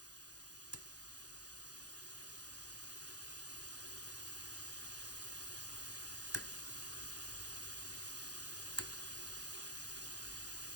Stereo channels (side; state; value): right; late; 0.68 ms